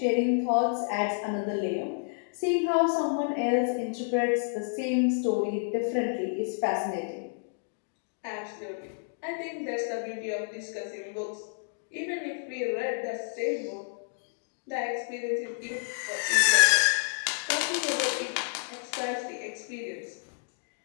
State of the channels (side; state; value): right; silent; digital silence